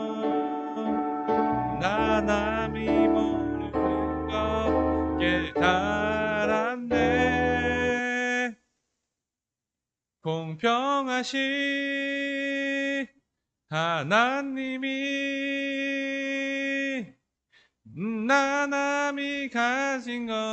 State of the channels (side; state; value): both; identical; correlation 1.00